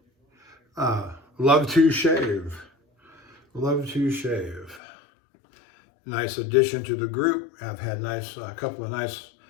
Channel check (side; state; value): right; drops out; at 4.8 s